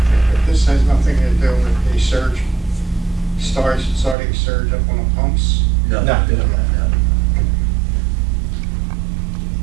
This has nothing to do with the surge, starting surge up on the pumps? No. No.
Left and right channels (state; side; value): drops out; left; at 4.2 s